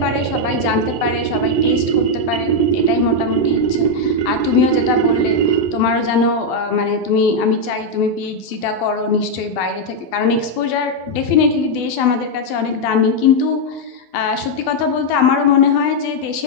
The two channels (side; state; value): right; late; 12 ms